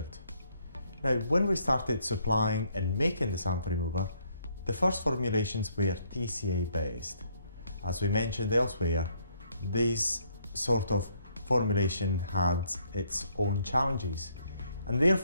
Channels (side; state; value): both; inverted; correlation -0.69